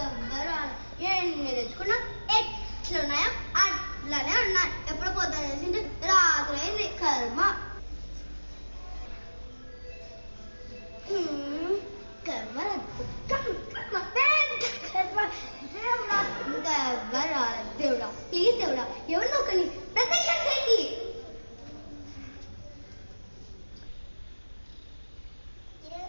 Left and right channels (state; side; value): inverted; both; correlation -1.00